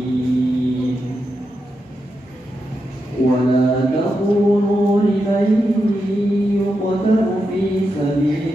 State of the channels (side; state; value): both; normal; correlation 0.86